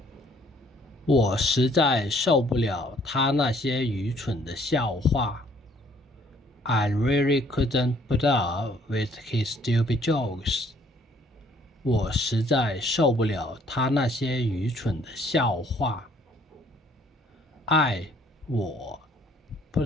我实在受不了他那些愚蠢的笑话。I really couldn't put up with his stupid jokes 我实在受不了他那些愚蠢的笑话。我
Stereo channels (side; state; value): both; normal; correlation 0.62